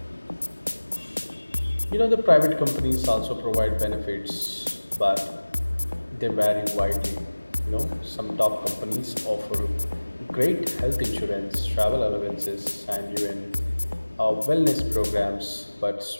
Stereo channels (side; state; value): both; inverted; correlation -1.00